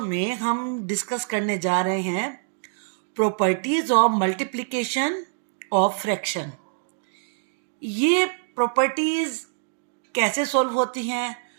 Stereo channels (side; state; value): left; silent; digital silence